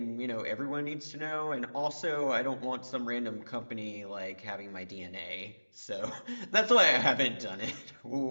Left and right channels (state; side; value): inverted; both; correlation -1.00